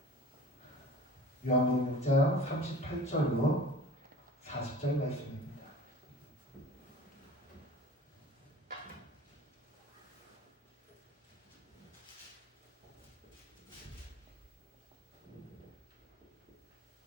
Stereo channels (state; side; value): normal; both; correlation 0.42